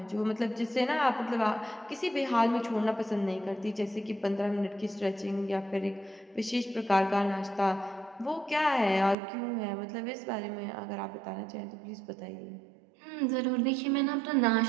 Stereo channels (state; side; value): drops out; left; at 9.2 s